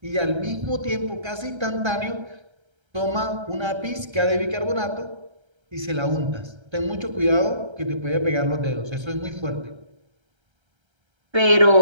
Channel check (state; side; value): late; left; 1.3 ms